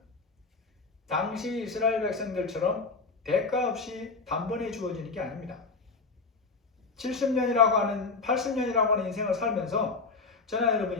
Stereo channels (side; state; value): right; quieter; 4.2 dB